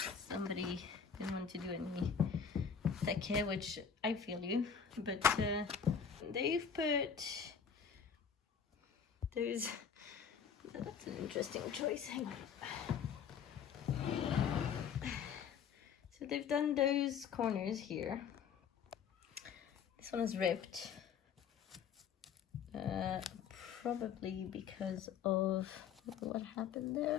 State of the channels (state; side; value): quieter; right; 7.1 dB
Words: Somebody didn't want to do any take, which I feel you, but they've put those, that's an interesting choice, hang on. So they've done those corners here. This one is ripped, probably because of what happened